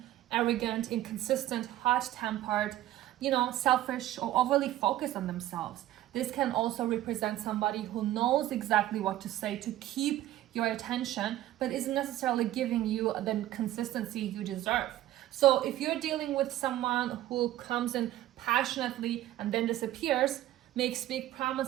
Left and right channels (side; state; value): left; quieter; 14.2 dB